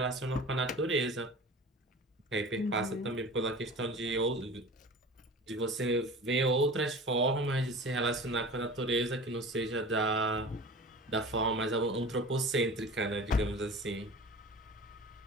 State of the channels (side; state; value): both; normal; correlation 0.37